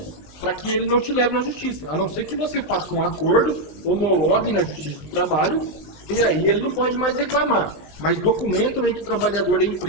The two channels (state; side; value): late; right; 19 ms